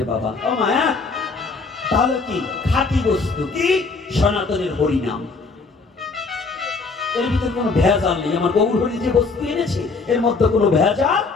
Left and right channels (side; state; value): right; quieter; 4.2 dB